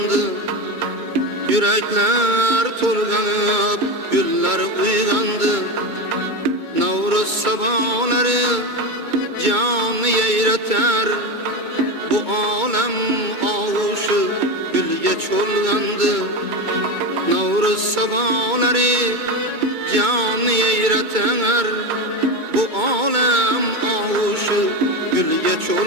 yürekler tolganıp, güller uygandı. Navruz sabahları canı yeyreter, bu alem ağuşu gülge çolgandı. Navruz sabahları canı yeyreter, bu alem ağuşu gülge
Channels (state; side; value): late; left; 2.2 ms